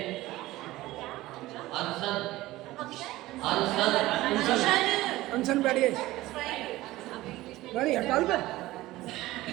अनशन अनशन अनशन बैठिए बैठिए हड़ताल पे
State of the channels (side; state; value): left; quieter; 17.5 dB